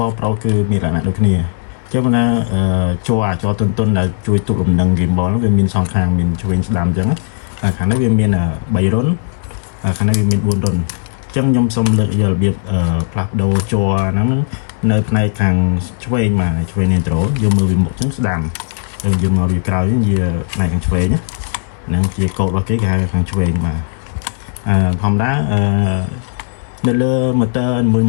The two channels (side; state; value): right; silent; digital silence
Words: 4 Pro គឺមានលក្ខណៈដូចគ្នាចឹងណាជាប់ទុនដែលជួយទប់លំនឹង gimbal ហ្នឹងវាមានសងខាងមានឆ្វេងស្ដាំចឹងតែខាងនេះវាមាន3រុនខាងនេះវាមាន4រុនចឹងខ្ញុំសូមលើកយករបៀបផ្លាស់ប្ដូរជ័រហ្នឹងនៅផ្នែកខាងឆ្វេងមកឆ្វេង neutral យកមើលវាមុខចឹងស្ដាំទៅយើងមកវាក្រោយវិញវាផ្នែកខាងឆ្វេងហ្នឹងជាកូដរបស់គេហៅខាងឆ្វេងបាទធម្មតានៅលើ motor ម